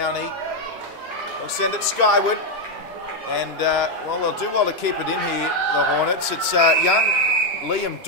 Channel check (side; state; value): both; normal; correlation 0.04